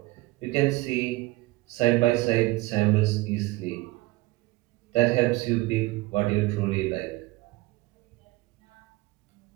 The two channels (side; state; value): left; quieter; 20.4 dB